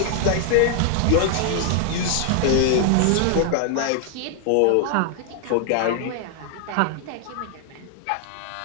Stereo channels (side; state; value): both; different; correlation 0.00